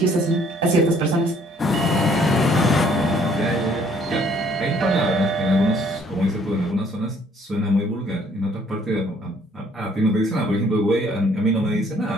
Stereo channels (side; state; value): both; normal; correlation 0.62